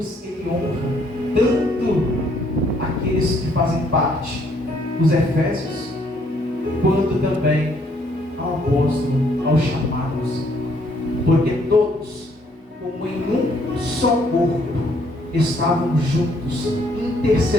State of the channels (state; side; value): normal; both; correlation 0.67